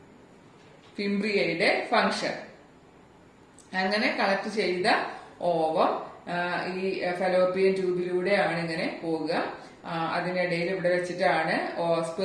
ഫിംബ്രിയയുടെ ഫംഗ്ഷൻ. അങ്ങനെ കളക്ട് ചെയ്ത ഓവം ഈ ഫലോപ്പിയൻ ട്യൂബിലൂടെയാണ് ഇങ്ങനെ പോവുക. അതിനിടയിൽ ഇവിടെ വെച്ചിട്ടാണ്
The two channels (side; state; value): both; identical; correlation 1.00